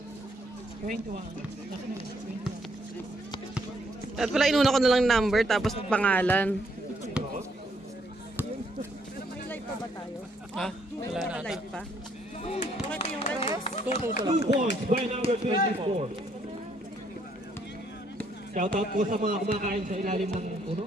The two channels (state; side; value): normal; both; correlation 0.69